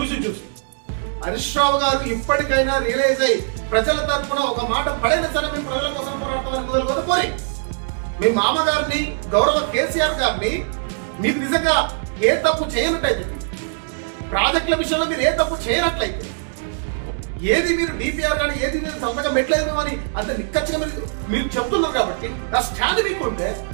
హరీష్ రావు గారు ఇప్పటికైనా రియలైజ్ అయ్యి ప్రజల తరఫున ఒక మాట పడైనా సరే మేము ప్రజల కోసం పోరాడతామని మొదలుకొని పోయి మీ మామగారిని, గౌరవ కేసీఆర్ గారిని, మీరు నిజంగా ఏ తప్పు చేయనట్టయితే, ప్రాజెక్టుల విషయంలో మీరు ఏ తప్పు చేయనట్లయితే, ఏది మీరు డిపిఆర్ కానీ ఏది మీరు సంతకం పెట్టలేదు అని అంత నిక్కచ్చిగా మీరు చెప్తున్నారు కాబట్టి ఆ స్టాండ్ మీకు ఉంటే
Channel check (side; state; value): left; silent; digital silence